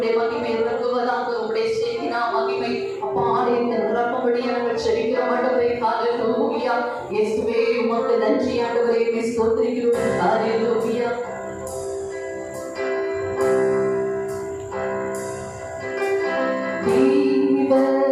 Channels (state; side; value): identical; both; correlation 1.00